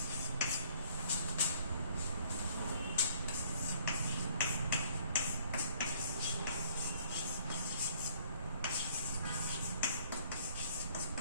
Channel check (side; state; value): both; inverted; correlation -0.60